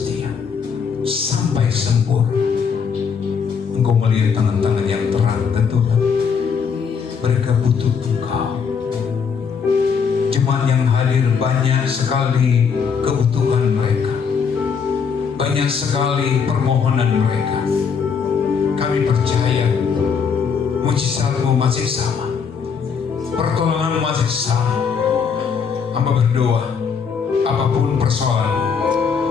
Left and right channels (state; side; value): quieter; right; 6.2 dB